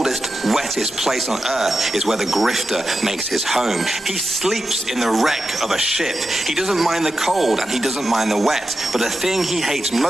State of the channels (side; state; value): both; normal; correlation 0.90